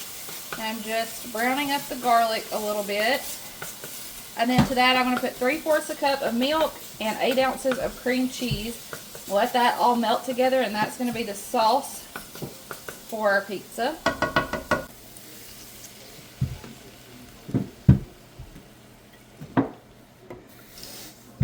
And I'm just browning up the garlic a little bit. And then to that, I'm going to put 3/4 a cup of milk and 8 ounces of cream cheese. Let that all melt together, and that's going to be the sauce for our pizza.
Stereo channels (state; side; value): identical; both; correlation 1.00